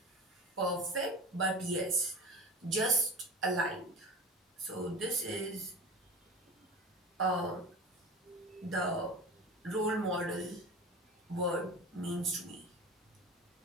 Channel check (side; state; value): both; normal; correlation 0.33